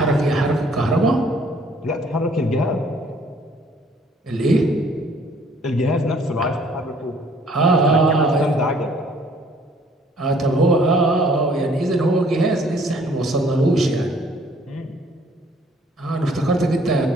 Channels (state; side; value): normal; both; correlation 0.60